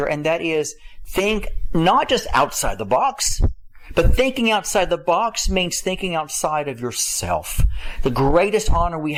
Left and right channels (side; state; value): both; identical; correlation 1.00